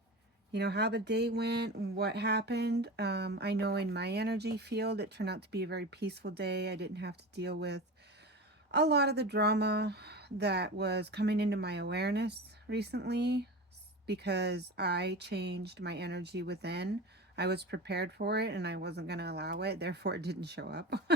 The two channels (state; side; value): normal; both; correlation 0.29